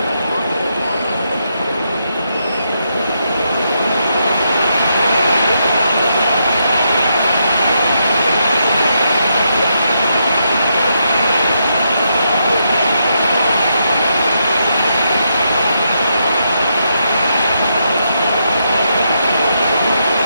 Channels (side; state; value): both; inverted; correlation -0.81